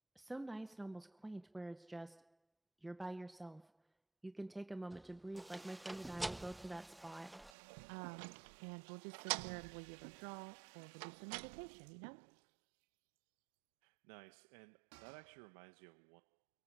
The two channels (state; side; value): drops out; left; at 7.5 s